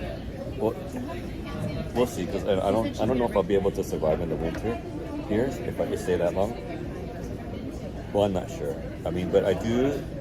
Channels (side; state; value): both; identical; correlation 1.00